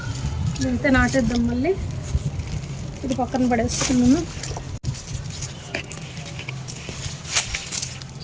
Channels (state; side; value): identical; both; correlation 1.00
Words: ఇదైతే నాటేద్దాం మళ్ళీ. ఇది పక్కన పడేస్తున్నాను.